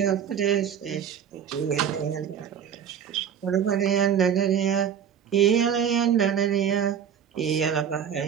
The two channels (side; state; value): left; quieter; 8.4 dB